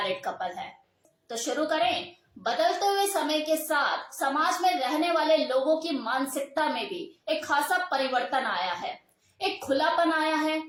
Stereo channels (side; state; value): both; identical; correlation 1.00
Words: कपल है। तो शुरू करें। बदलते हुए समय के साथ समाज में रहने वाले लोगों की मानसिकता में भी एक खासा परिवर्तन आया है, एक खुलापन आया है।